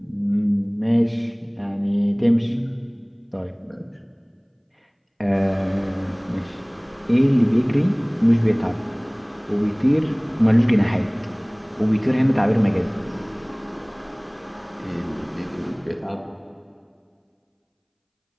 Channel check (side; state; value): both; identical; correlation 1.00